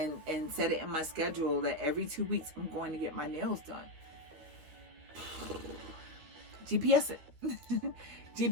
set it in my schedule that every 2 weeks I'm going to get my nails done. GPS it.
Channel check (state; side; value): late; left; 13 ms